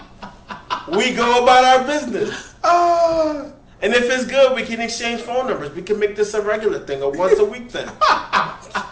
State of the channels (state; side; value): identical; both; correlation 1.00